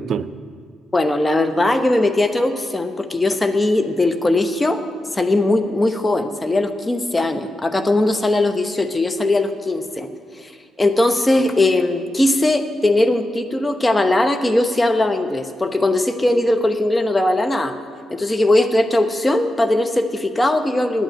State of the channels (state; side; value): normal; both; correlation 0.90